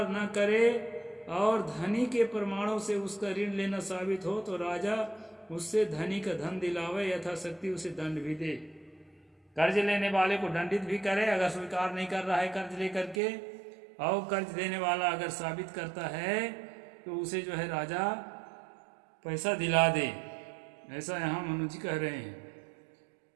न करे और धनी के प्रमाणों से उसका ऋण लेना साबित हो तो राजा उससे धनी का धन दिलावे, यथाशक्ति उसे दंड भी दे। कर्ज लेने वाले को दंडित भी करे अगर स्वीकार नहीं कर रहा है कर्ज लेकर के, और कर्ज देने वाला अगर साबित करता है तो उसे जो है राजा पैसा दिला दे। ऐसा यहाँ मनु जी कह रहे हैं।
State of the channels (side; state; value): left; drops out; at 13.2 s